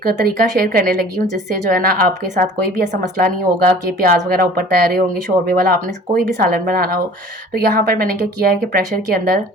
तरीका शेयर करने लगी हूँ जिससे जो है ना आपके साथ कोई भी ऐसा मसला नहीं होगा कि प्याज वगैरह ऊपर तैयार होंगे शोरबे वाला, आपने कोई भी सालन बनाना हो। तो यहाँ पर मैंने क्या किया है कि प्रेशर के अंदर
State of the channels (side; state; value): both; normal; correlation 0.47